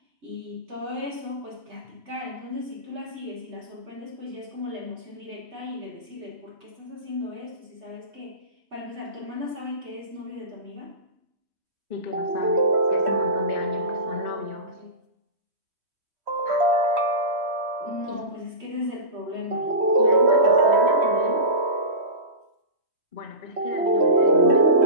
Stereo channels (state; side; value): late; left; 3.3 ms